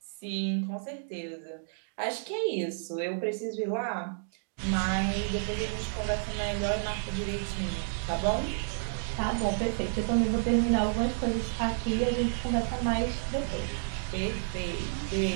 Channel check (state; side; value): silent; left; digital silence